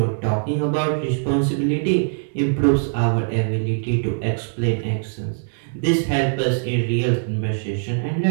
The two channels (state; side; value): silent; left; digital silence